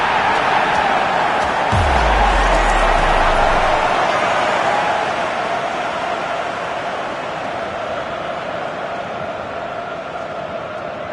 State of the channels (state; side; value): identical; both; correlation 1.00